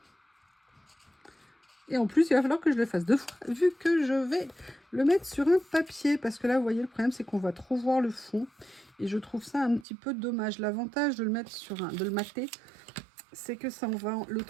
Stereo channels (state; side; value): drops out; left; at 9.9 s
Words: Et en plus, il va falloir que je le fasse 2 fois, vu que je vais le mettre sur un papier. Parce que là, vous voyez, le problème, c'est qu'on va trop voir le fond. Et je trouve ça un petit peu dommage. L'avantage de le mettre sur de le mater, c'est que ça, on va le